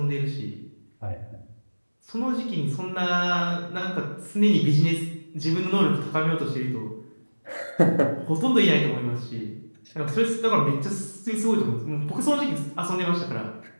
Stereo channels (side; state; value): both; inverted; correlation -1.00